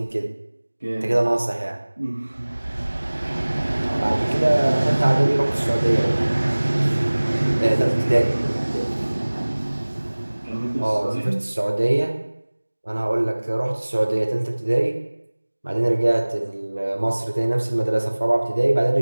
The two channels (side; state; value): both; inverted; correlation -1.00